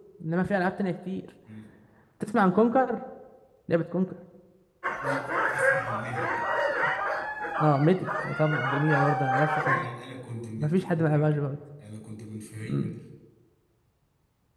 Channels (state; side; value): identical; both; correlation 1.00